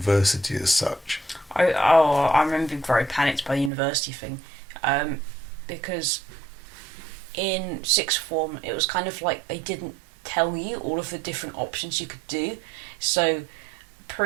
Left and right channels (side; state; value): left; drops out; at 3.7 s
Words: as such. I remember being very panicked by the university thing. because in sixth form it was kind of like they didn't tell you all of the different options you could do. So